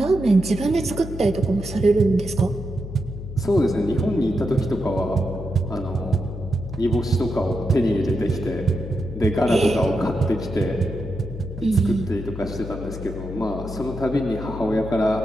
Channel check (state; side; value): noise; left; hum, 10 dB below the sound